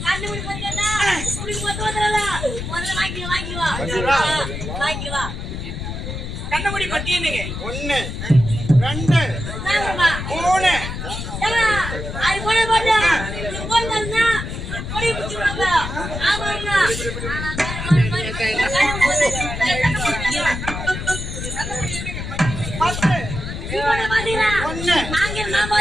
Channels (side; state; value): left; noise; rumble, 6 dB below the sound